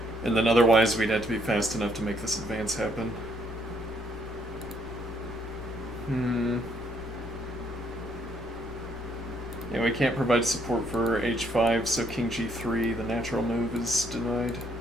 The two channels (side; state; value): both; normal; correlation 0.69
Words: And then otherwise we'd have to be fast enough to make this advance happen. Yeah, we can't provide support for h5, so king g3, the natural move, is denied.